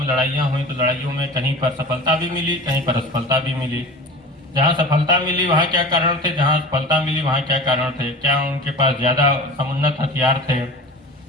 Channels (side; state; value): both; normal; correlation 0.36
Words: लड़ाइयाँ हुई, तो लड़ाइयों में कहीं पर सफलता भी मिली, कहीं पर असफलता भी मिली। जहाँ सफलता मिली वहाँ क्या कारण थे, जहाँ असफलता मिली वहाँ क्या कारण थे, क्या उनके पास ज्यादा समुन्नत हथियार थे,